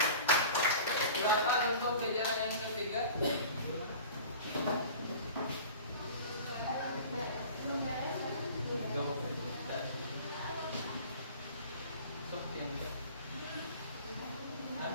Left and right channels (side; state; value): both; inverted; correlation -0.41